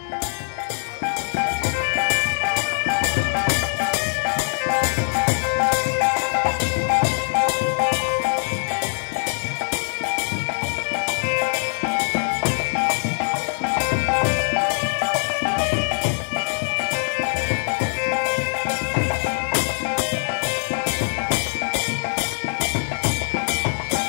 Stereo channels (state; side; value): silent; right; digital silence